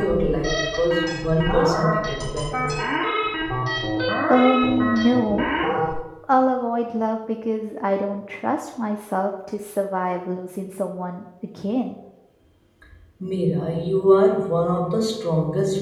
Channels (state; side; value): identical; both; correlation 1.00